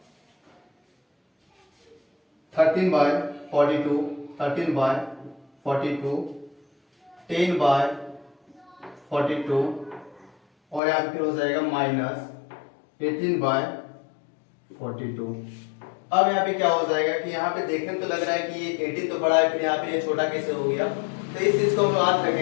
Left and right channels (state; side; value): drops out; right; at 10.8 s